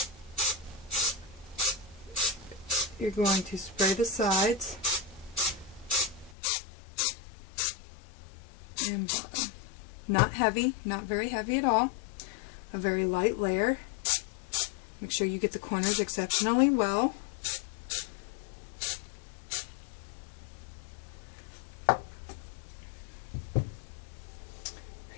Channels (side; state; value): right; drops out; at 6.4 s